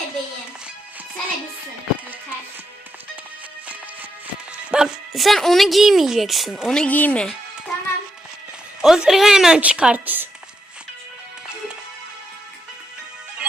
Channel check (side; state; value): both; normal; correlation 0.81